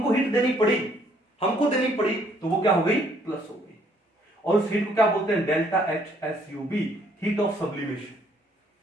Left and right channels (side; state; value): both; normal; correlation 0.65